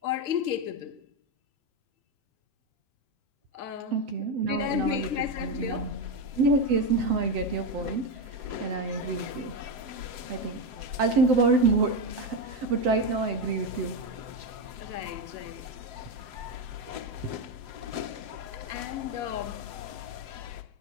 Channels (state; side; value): late; left; 7.8 ms